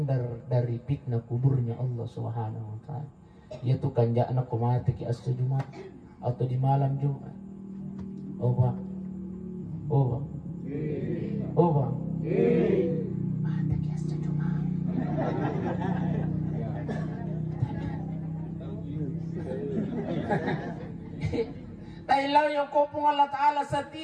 dari fitnah kuburnya Allah Subhanahu wa taala. Yaitu kanja anak mati ki asal Jumat atau di malam Jumat. Oh Pak. Oh Pak. Oh Pak. Mati ki asal Jumat. Tailaw yung kopong Allah Ta'ala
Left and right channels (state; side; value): identical; both; correlation 1.00